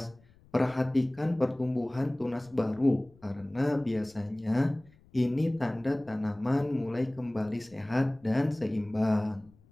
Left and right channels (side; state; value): left; noise; rumble, 28 dB below the sound